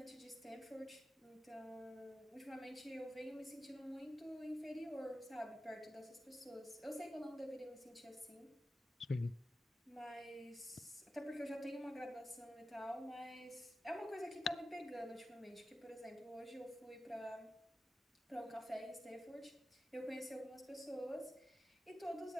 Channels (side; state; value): both; normal; correlation 0.93